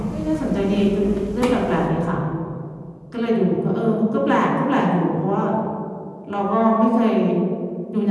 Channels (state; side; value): identical; both; correlation 1.00